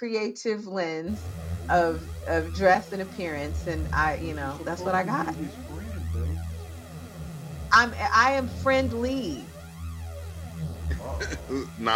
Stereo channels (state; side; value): identical; both; correlation 1.00